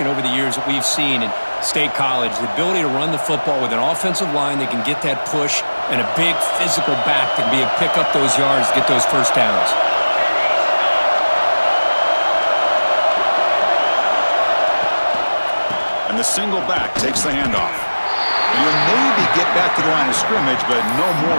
over the years that we've seen in State College. The ability to run the football with an offensive line that can get that push and a big physical back that can be able to pick up those yards, get those first downs. And the single back takes the handoff. And you'll maybe get back to the line of scrimmage, but no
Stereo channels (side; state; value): both; inverted; correlation -1.00